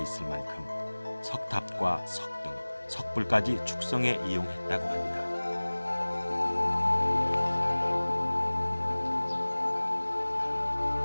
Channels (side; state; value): both; inverted; correlation -1.00